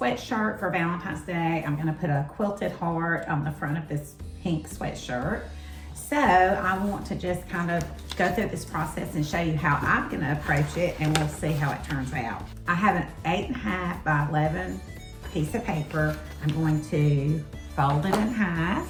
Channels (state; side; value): identical; both; correlation 1.00